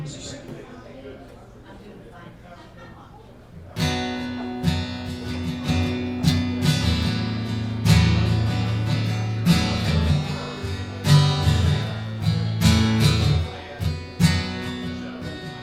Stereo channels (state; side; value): identical; both; correlation 1.00